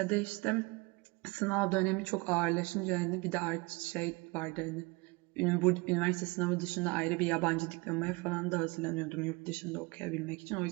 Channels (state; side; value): quieter; left; 26.2 dB